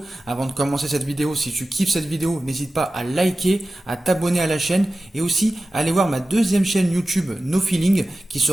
Avant de commencer cette vidéo, si tu kiffes cette vidéo, n'hésite pas à liker, à t'abonner à la chaîne et aussi à aller voir ma deuxième chaîne YouTube No Feeling qui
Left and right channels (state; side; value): normal; both; correlation 0.95